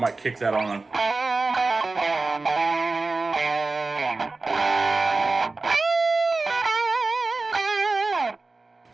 kick that on.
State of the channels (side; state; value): left; quieter; 3.6 dB